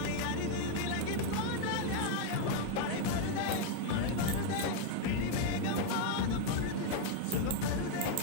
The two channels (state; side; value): different; both; correlation 0.01